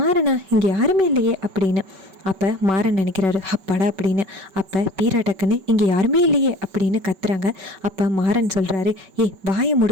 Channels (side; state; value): left; late; 5.2 ms